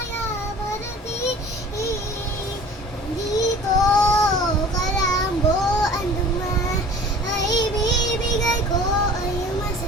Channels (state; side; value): normal; both; correlation 0.45